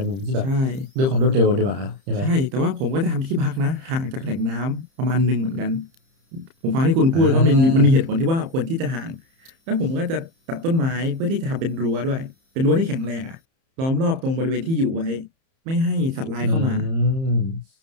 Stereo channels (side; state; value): left; late; 30 ms